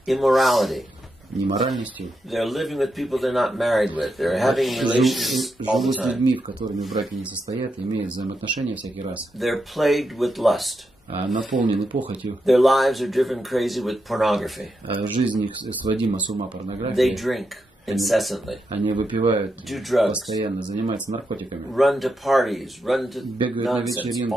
immorality. неморальностью. They're living with people they're not married with. They're having relations all the Живут с time. людьми, в которыми браки не состоят, имеют взаимоотношения всякий раз. They're plagued with lust. Наполнены похотью. Their lives are driven crazy with pornography. Жизнь их сводима с ума They порнографией. drink incessantly, Они выпивают do drugs, постоянно, занимаются наркотиками. run to parties, run to Бегают на nonsense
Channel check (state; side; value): normal; both; correlation 0.84